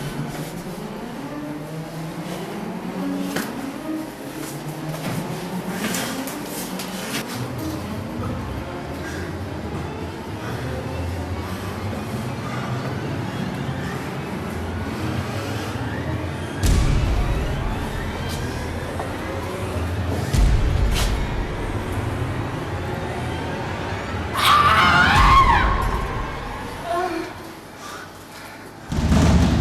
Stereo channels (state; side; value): identical; both; correlation 1.00